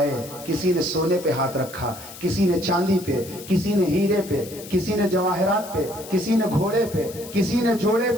کسی نے سونے پہ ہاتھ رکھا، کسی نے چاندی پہ، کسی نے ہیرے پہ، کسی نے جواہرات پہ، کسی نے گھوڑے پہ، کسی نے جوڑے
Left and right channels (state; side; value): noise; left; hiss, 16 dB below the sound